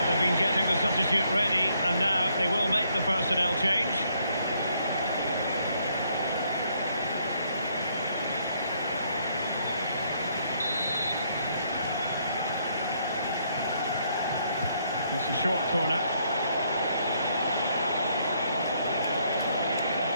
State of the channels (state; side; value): inverted; both; correlation -0.71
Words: they've been getting the substitute ready, and now they will make the personnel change. It's a short corner.